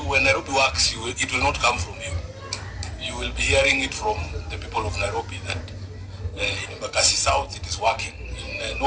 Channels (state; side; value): identical; both; correlation 1.00